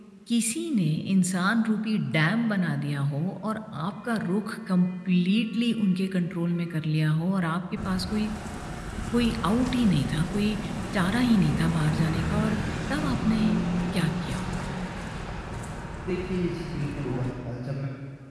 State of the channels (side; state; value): both; identical; correlation 1.00